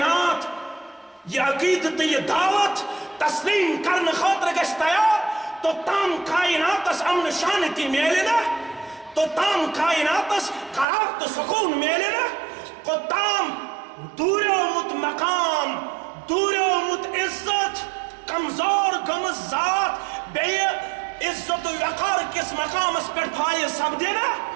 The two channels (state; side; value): drops out; left; at 10.9 s